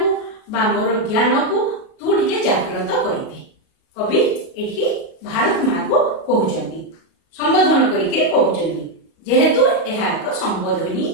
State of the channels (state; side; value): late; right; 37 ms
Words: बा मोर ज्ञान को तू टिके जागृत करिदे कवि एठी भारत माँ को कहउचंदी संबोधन करिके कहउचंदी जेहेतु एहा एक संबोधनी